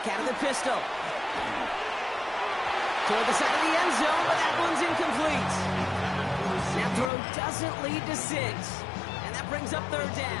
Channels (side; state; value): right; drops out; at 7.1 s